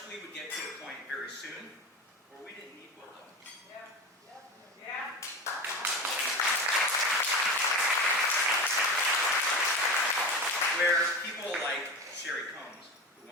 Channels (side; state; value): both; normal; correlation 0.28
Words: we would get to a point very soon where we didn't need Wlda. Yeah. Where people like Sherry Combs, who